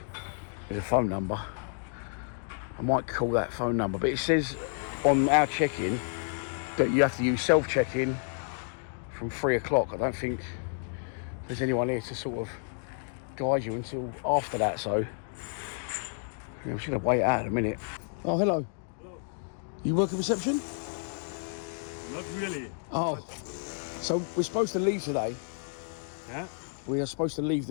There's a phone number. I might call that phone number, but it says on our check-in that you have to use self-check-in from 3 o'clock. I don't think there's anyone here to sort of guide you until after that, so yeah, we're just gonna wait out a minute. Oh, hello. Hello. You work at reception? Not really. Oh, so we're supposed to leave today. Yeah? We are supposed to leave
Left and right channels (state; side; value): silent; right; 58 dB below the other